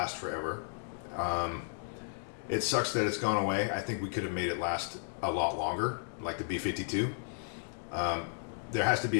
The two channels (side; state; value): right; silent; digital silence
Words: forever. It sucks that it's gone away. I think we could have made it last a lot longer, like the B-52. There has to